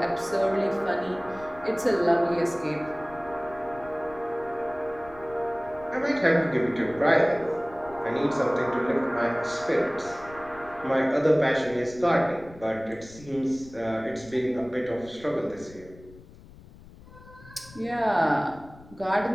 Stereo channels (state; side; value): noise; left; rumble, 21 dB below the sound